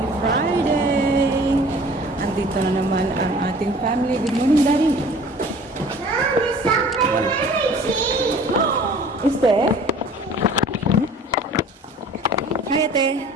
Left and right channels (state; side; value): normal; both; correlation 0.48